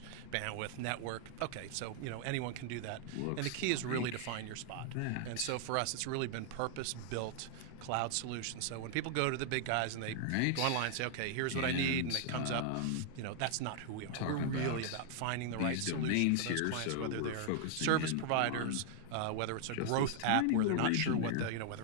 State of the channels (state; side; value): different; both; correlation 0.00